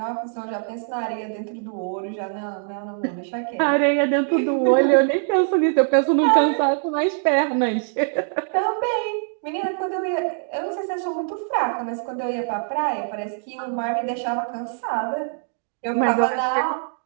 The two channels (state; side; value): silent; left; digital silence